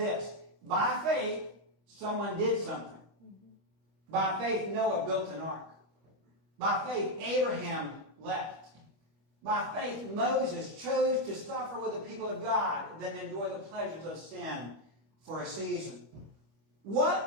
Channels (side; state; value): left; late; 25 ms